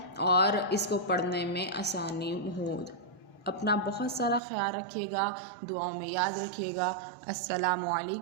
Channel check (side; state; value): left; drops out; at 4.4 s